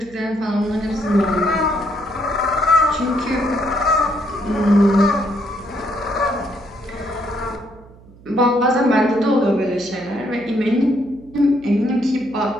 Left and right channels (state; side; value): noise; right; hum, 23 dB below the sound